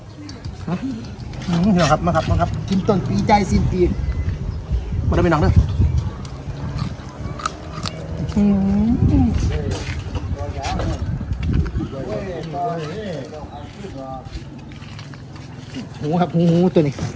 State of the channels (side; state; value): both; identical; correlation 1.00